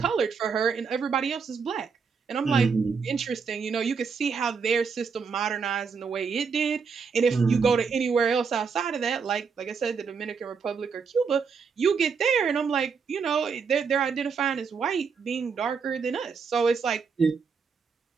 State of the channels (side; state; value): left; quieter; 5.7 dB